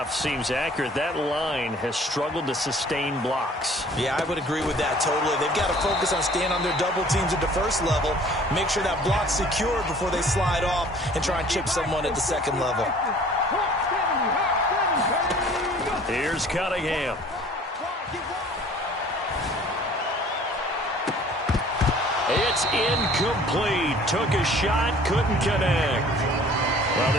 seems accurate. That line has struggled to sustain blocks. Yeah, I would agree with that totally. They've got to focus on staying on their double teams at the first level, make sure that block's secured before they slide off and try and chip someone at the second level. Here's Cunningham. It's incomplete. Took a shot, couldn't connect. Well,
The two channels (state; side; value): normal; both; correlation 0.51